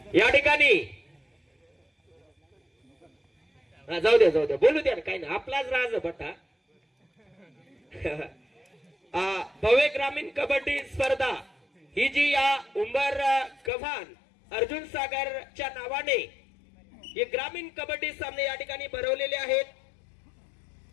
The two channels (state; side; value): drops out; right; at 13.7 s